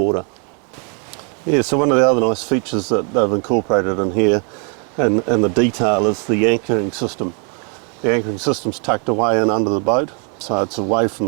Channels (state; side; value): quieter; left; 38.1 dB